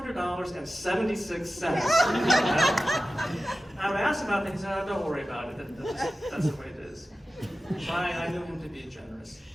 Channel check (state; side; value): normal; both; correlation 0.94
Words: I would ask him about that. He said, oh, don't worry about it. That's the way it is. I knew him to be generous.